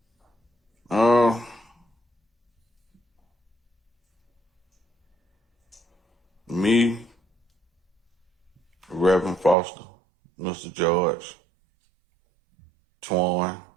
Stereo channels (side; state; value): left; drops out; at 9.6 s